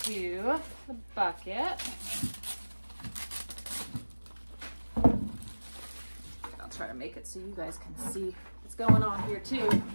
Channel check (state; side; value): inverted; both; correlation -1.00